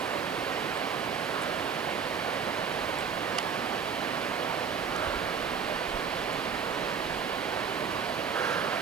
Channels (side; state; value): left; quieter; 6.4 dB